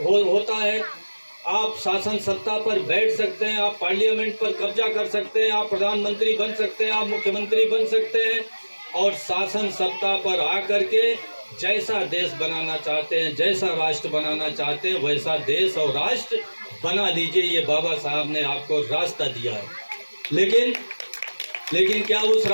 है, आप शासन सत्ता पर बैठ सकते हैं, आप पार्लियामेंट पर कब्जा कर सकते हैं, आप प्रधानमंत्री बन सकते हैं, आप मुख्यमंत्री बन सकते हैं, और शासन सत्ता पर आकर के जैसा देश बनाना चाहते हैं, जैसा राष्ट्र बनाना चाहते हैं, वैसा देश और राष्ट्र बना लीजिए। ये बाबा साहब ने आपको रास्ता दिया है। लेकिन क्या उस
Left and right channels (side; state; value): both; inverted; correlation -1.00